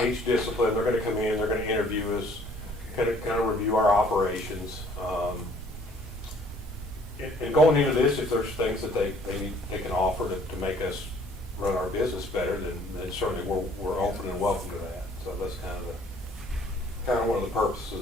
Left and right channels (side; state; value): both; normal; correlation 0.58